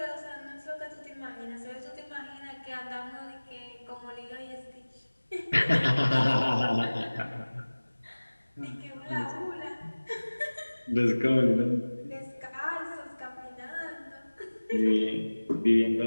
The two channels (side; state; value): both; inverted; correlation -1.00